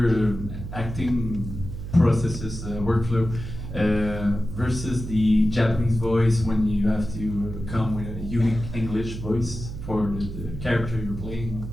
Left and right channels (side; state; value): right; noise; hum, 8 dB below the sound